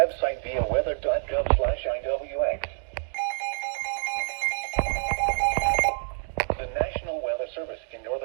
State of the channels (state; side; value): silent; left; digital silence